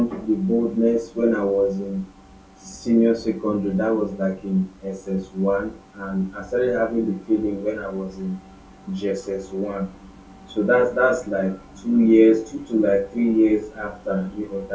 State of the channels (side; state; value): both; identical; correlation 1.00